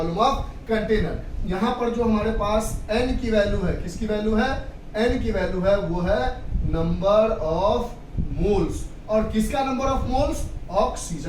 of container. यहाँ पर जो हमारे पास n की वैल्यू है, किसकी वैल्यू है, n की वैल्यू है वो है नंबर ऑफ मोल्स। और किसका नंबर ऑफ मोल्स,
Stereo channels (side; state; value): both; identical; correlation 1.00